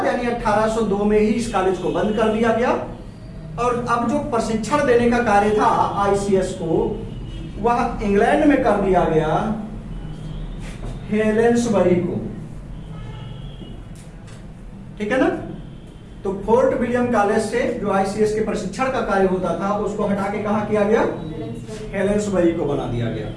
यानी 1802 में ही इस कॉलेज को बंद कर दिया गया और अब जो प्रशिक्षण देने का कार्य था आईसीएस को, वह इंग्लैंड में कर दिया गया हेलेंसबरी को। ठीक है ना? तो फोर्ट विलियम कॉलेज से जो आईसीएस के प्रशिक्षण का कार्य होता था उसको हटा के कहा किया गया? हेलेंसबरी को बना दिया गया।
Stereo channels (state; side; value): identical; both; correlation 1.00